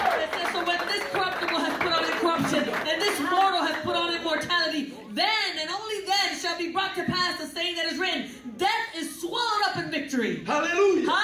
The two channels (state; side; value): identical; both; correlation 1.00